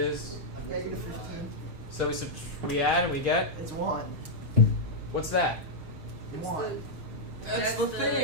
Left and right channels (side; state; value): left; late; 6.5 ms